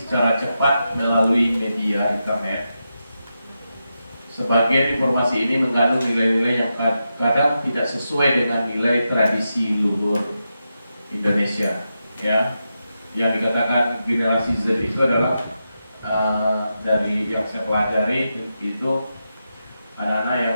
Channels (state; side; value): inverted; both; correlation -0.88